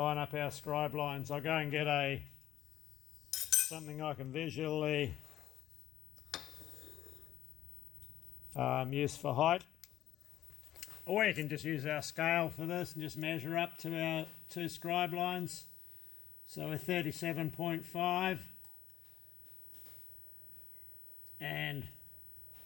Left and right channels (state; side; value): quieter; right; 12.6 dB